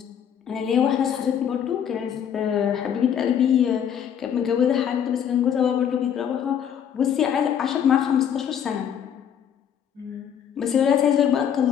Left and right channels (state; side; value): quieter; right; 8.7 dB